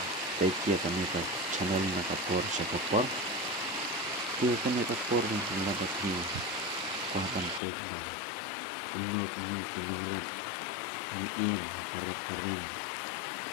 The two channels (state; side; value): drops out; right; at 7.6 s